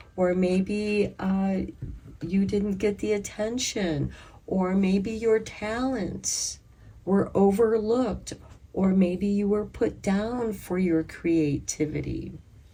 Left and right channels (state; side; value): identical; both; correlation 1.00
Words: or maybe you didn't get the attention, or maybe your talents were overlooked, or maybe you were put down for your creativity.